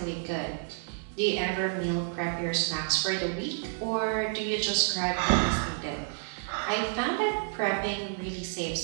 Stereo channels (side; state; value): left; silent; digital silence